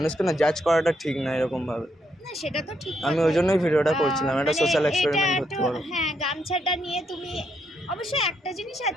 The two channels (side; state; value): both; normal; correlation 0.76